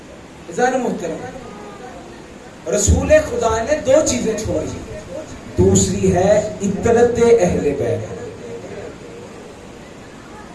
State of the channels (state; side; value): identical; both; correlation 1.00